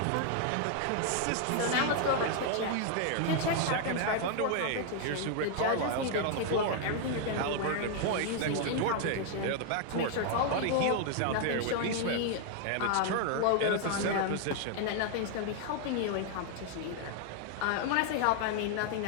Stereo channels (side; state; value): both; different; correlation 0.00